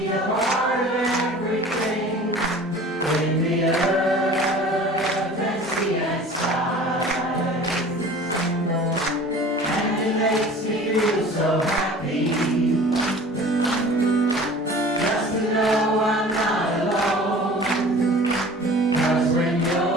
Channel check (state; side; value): normal; both; correlation 0.43